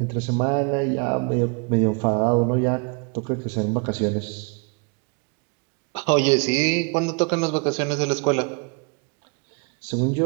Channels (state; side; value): quieter; left; 33.9 dB